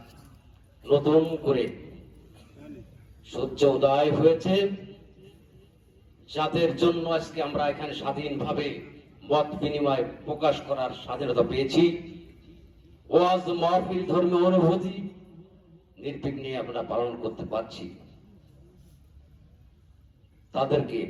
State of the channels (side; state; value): both; identical; correlation 1.00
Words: নতুন করে সূর্য উদয় হয়েছে, যাদের জন্য আজকে আমরা এখানে স্বাধীনভাবে মত বিনিময় প্রকাশ করার স্বাধীনতা পেয়েছি। ওয়াজ মাহফিল ধর্মীয় অনুভূতি নির্বিঘ্নে আমরা পালন করতে পারছি। তাদেরকে